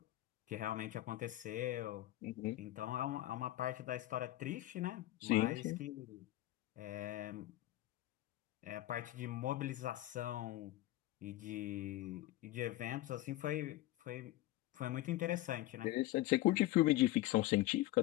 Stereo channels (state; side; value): quieter; right; 16.4 dB